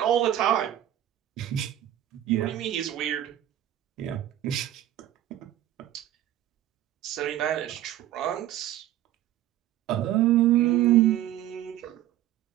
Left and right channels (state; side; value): quieter; left; 12.8 dB